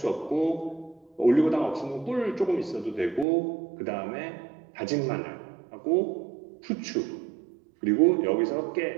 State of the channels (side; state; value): left; drops out; at 3.2 s